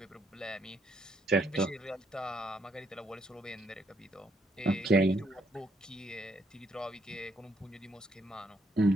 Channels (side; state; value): both; normal; correlation 0.72